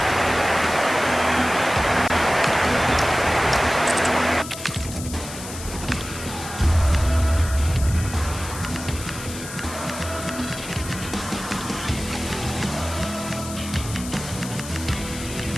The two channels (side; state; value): left; noise; hiss, 11 dB below the sound